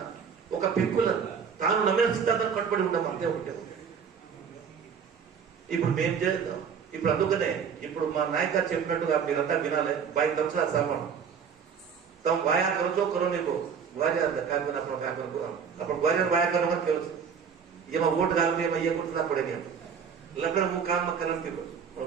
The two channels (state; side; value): quieter; left; 6.8 dB